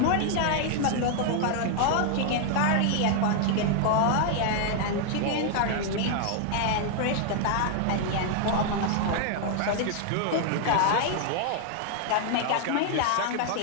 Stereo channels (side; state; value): both; different; correlation 0.00